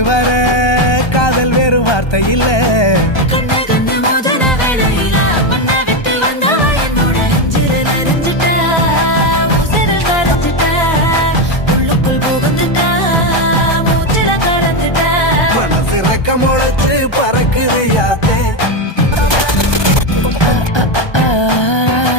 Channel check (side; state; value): right; late; 1.2 ms